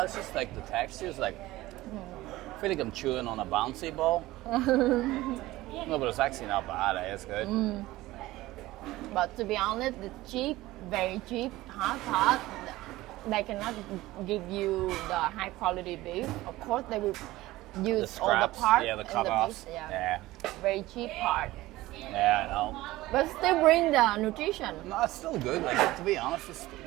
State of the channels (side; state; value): left; quieter; 17.8 dB